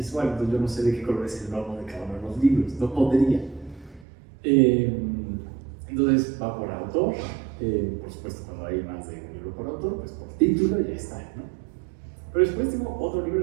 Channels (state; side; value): drops out; left; at 4.0 s